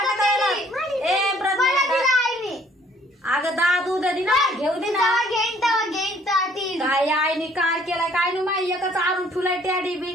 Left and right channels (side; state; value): both; normal; correlation 0.60